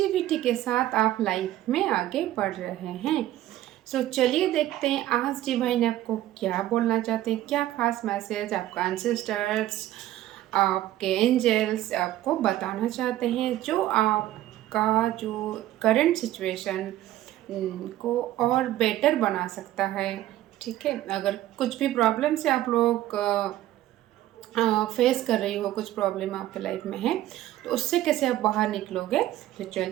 के साथ आप लाइफ में आगे बढ़ रहे हैं। सो चलिए देखते हैं आज डिवाइन आपको क्या बोलना चाहते हैं, क्या खास मैसेज आपका एंसेस्टर्स, आपके एंजल्स आपको बताना चाहते हैं, जो आपका जो करंट सिचुएशन को और बेटर बना सकता है। ठीक है, अगर कुछ भी प्रॉब्लम से आप लोग फेस कर रही हो, कुछ प्रॉब्लम आपके लाइफ में है, तो उससे कैसे आप बाहर निकलोगे। तो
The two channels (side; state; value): left; quieter; 14.2 dB